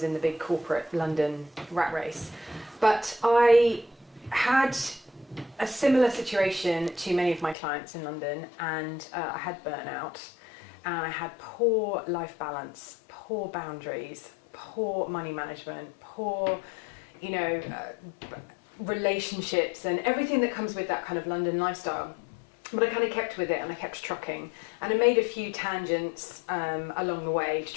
in the big corporate London rat race. But I had a similar situation to many of my clients in London, and I had burnout, and I had poor life balance, poor boundaries, poor money management, poor, relationships, and everything that comes with that kind of London lifestyle. But I kind of kept with it, and I kept trucking, and I made a few tangents along the way to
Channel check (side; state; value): right; drops out; at 7.6 s